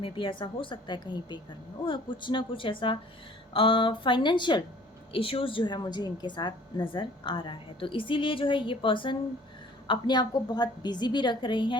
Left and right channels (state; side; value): normal; both; correlation 0.52